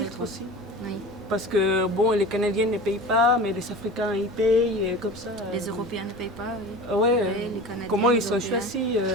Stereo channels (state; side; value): normal; both; correlation 0.35